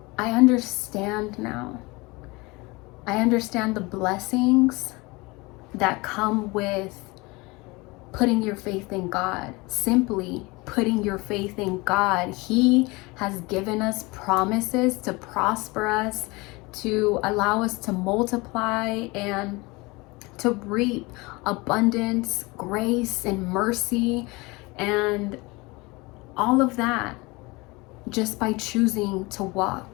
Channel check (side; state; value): right; quieter; 24.4 dB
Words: understand now. I understand the blessings that come with putting your faith in God. Simply putting your faith in God. He has given us promises to prosper us, to allow us to multiply and to reap abundance, grace, and mercy. And All of that just by choosing to